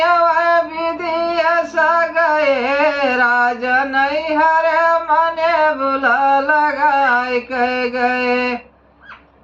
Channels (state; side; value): identical; both; correlation 1.00